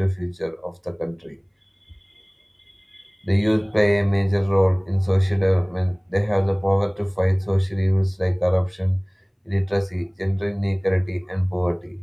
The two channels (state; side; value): identical; both; correlation 1.00